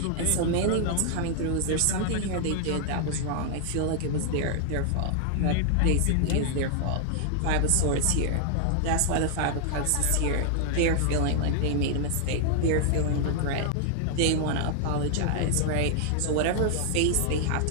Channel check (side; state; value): both; different; correlation 0.00